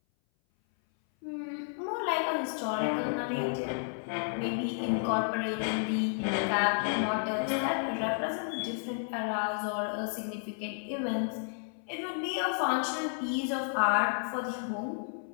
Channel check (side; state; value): right; silent; 57 dB below the other